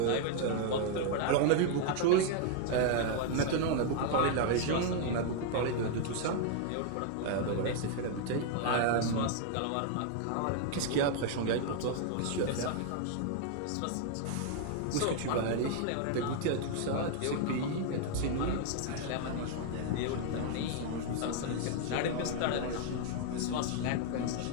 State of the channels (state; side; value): different; both; correlation 0.00